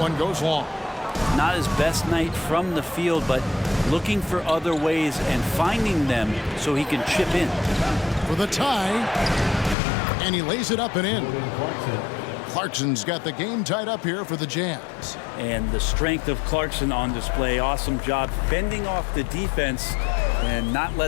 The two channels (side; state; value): right; drops out; at 9.8 s